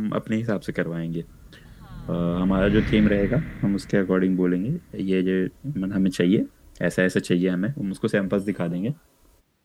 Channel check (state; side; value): identical; both; correlation 1.00